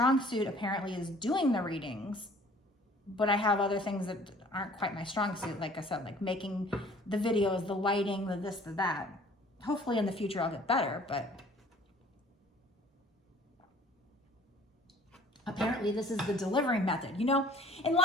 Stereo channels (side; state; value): both; normal; correlation 0.52